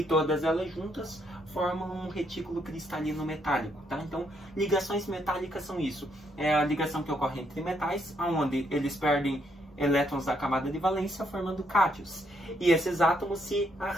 todas elas juntas formam um retículo cristalino metálico, tá? Então, ligações metálicas são isso. É a ligação que ocorre entre metais, onde eles perdem elétrons da camada de valência, formando cátions. E esses átomos se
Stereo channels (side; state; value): both; normal; correlation 0.74